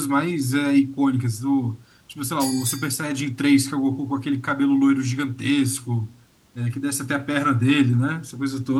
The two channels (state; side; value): identical; both; correlation 1.00